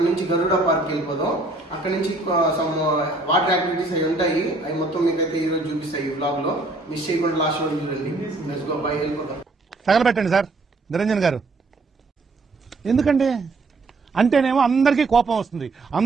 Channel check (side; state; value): left; quieter; 3.2 dB